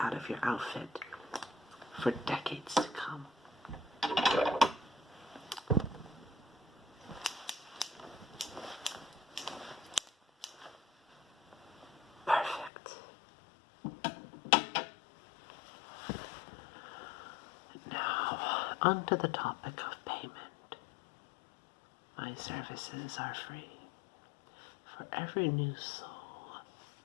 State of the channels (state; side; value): drops out; right; at 12.7 s